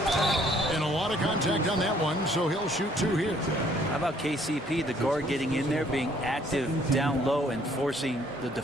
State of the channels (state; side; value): normal; both; correlation 0.62